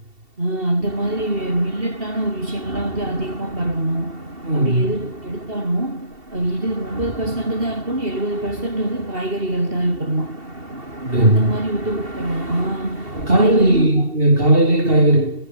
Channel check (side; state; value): left; late; 2.7 ms